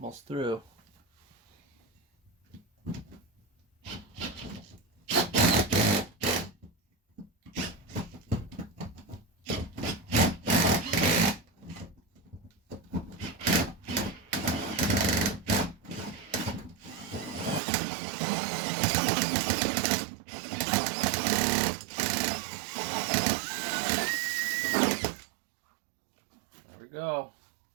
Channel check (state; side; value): drops out; left; at 17.6 s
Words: through. There we go.